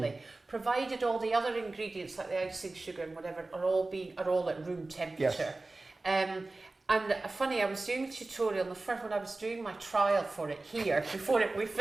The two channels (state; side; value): quieter; left; 3.2 dB